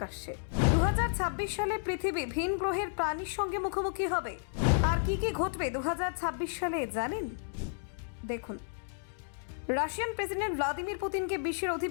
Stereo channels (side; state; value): right; silent; digital silence